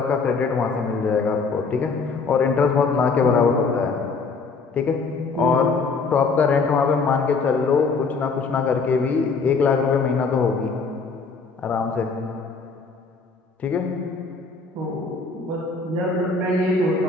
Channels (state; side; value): quieter; right; 4.5 dB